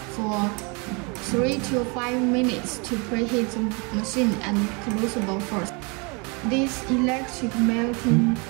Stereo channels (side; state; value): left; quieter; 31.2 dB